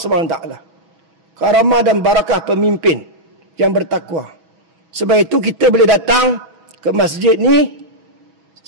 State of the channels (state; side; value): late; left; 6.0 ms